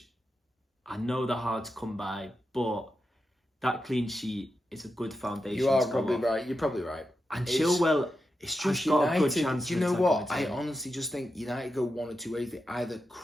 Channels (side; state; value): both; normal; correlation 0.88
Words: I know they're hard to come by, but that clean sheet it's a good foundation. You are probably right. You're probably right. And Chilwell, it's just got United. a good chance. Do you know what? I honestly just think United go 1 or 2 ways. They either